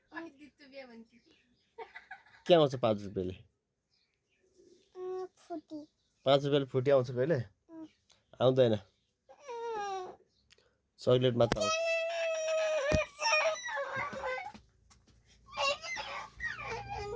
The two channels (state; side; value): identical; both; correlation 1.00